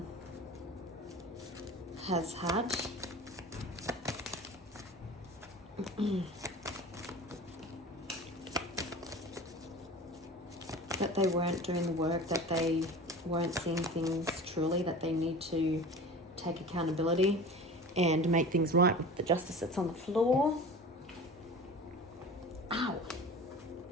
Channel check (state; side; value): normal; both; correlation 0.36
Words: has had? That they weren't doing the work, that they weren't seeing things truly, that they need to take accountability and make things right with the Justice that's on the floor. Ow!